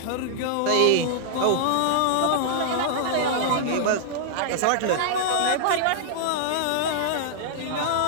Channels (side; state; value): both; different; correlation -0.01